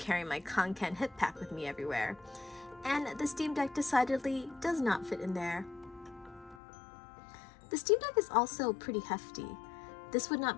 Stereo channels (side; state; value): right; drops out; at 6.6 s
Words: my Conken hip pack with me everywhere, and the Steam Deck decidedly does not fit in there. The Steam Deck is also pretty hefty. This would not